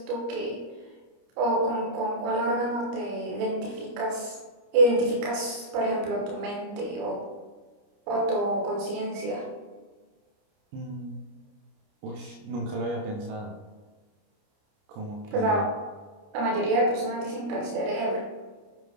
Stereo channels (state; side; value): late; left; 29 ms